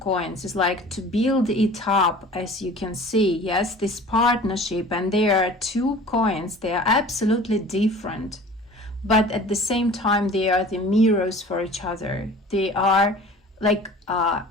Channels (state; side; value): normal; both; correlation 0.44